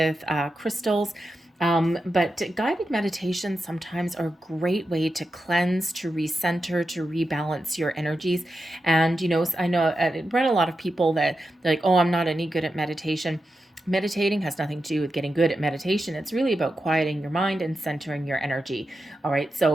crystals. But guided meditations sometimes are a great way to cleanse, to recenter, to rebalance your energies. And, I know I've read a lot of people that they're like, oh, I'm not any good at meditation. Meditating has nothing to do with getting good at meditation. It's really about quieting your mind and centering your energy. All right.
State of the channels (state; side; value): normal; both; correlation 0.89